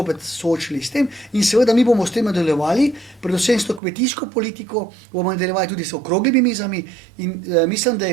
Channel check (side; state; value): left; drops out; at 3.8 s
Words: soočili s tem in seveda mi bomo s tem nadaljevali, predvsem s to kmetijsko politiko, bomo nadaljevali tudi s okroglimi mizami in mislim, da